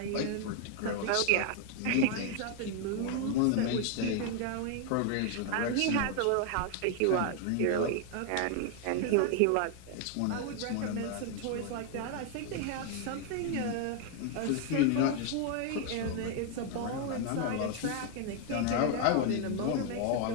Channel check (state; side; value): different; both; correlation 0.00